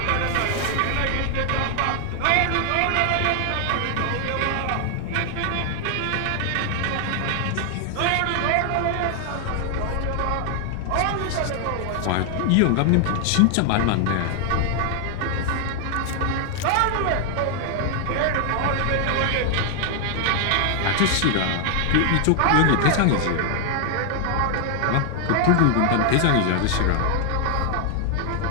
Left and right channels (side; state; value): both; different; correlation 0.00